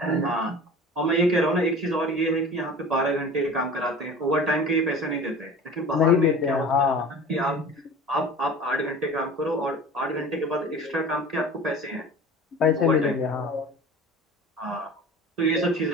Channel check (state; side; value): normal; both; correlation 0.39